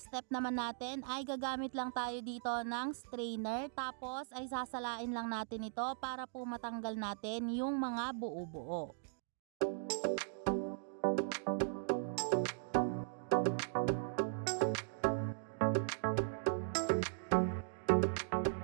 step naman natin ay gagamit lang tayo dito ng strainer, tapos ay sasalain lang natin ito para po matanggal natin yung mga buo-buo.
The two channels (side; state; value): left; silent; digital silence